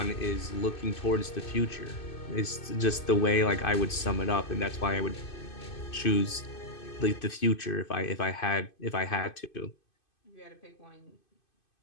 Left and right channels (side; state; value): right; late; 2.5 ms